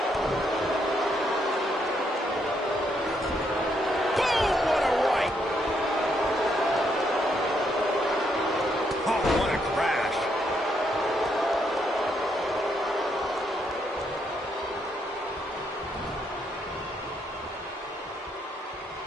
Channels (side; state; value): both; normal; correlation 0.75